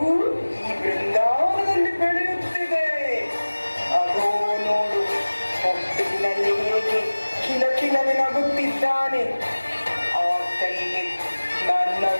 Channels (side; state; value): both; inverted; correlation -1.00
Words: ಈ ಬೃಂದಾವನದಲ್ಲಿ ಬೆಳೆಯುತ್ತಿದೆ. ಅದೋ ನೋಡು, ಹೊಟ್ಟಿನಲ್ಲಿ ಹೇಗೆ ಕಿಲಕಿಲನೆ ನಗುತ್ತಿದ್ದಾನೆ. ಆತನಿಗೆ ನನ್ನ